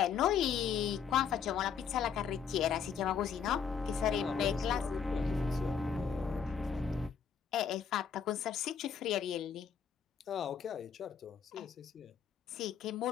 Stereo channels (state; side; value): quieter; right; 7.1 dB